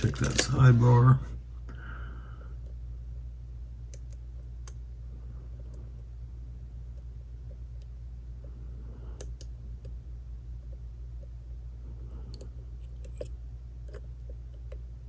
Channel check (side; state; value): both; identical; correlation 1.00